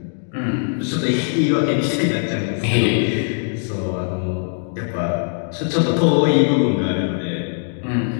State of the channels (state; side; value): silent; right; digital silence